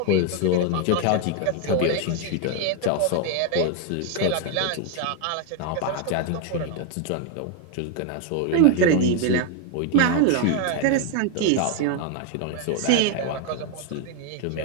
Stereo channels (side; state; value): both; different; correlation 0.01